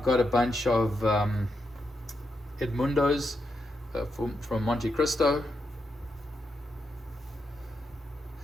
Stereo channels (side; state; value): both; normal; correlation 0.83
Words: got a bunch of Edmundos from Monte Cristo.